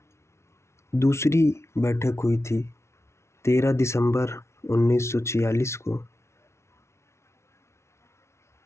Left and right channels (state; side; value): late; right; 0.13 ms